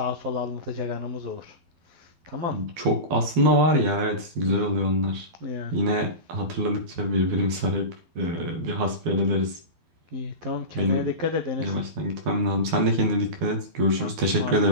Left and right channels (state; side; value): late; left; 12 ms